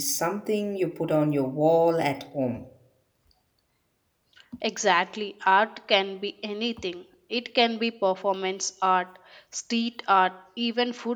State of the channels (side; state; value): both; identical; correlation 1.00